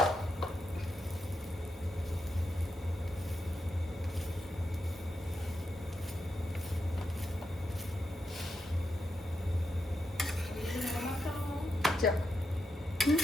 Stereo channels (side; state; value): both; normal; correlation 0.85